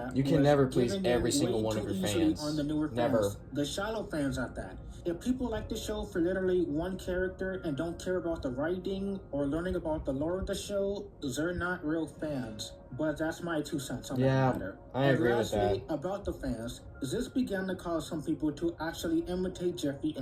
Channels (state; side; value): identical; both; correlation 1.00